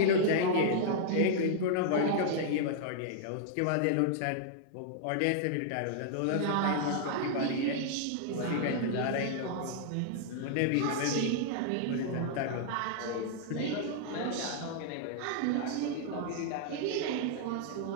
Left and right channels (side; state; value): both; different; correlation -0.01